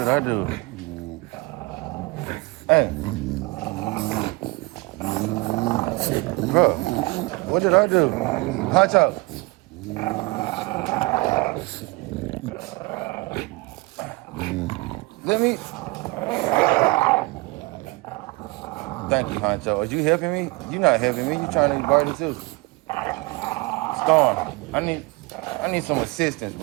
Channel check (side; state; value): left; quieter; 24.9 dB